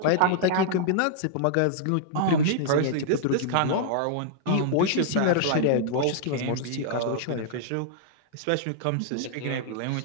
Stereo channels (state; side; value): different; both; correlation -0.01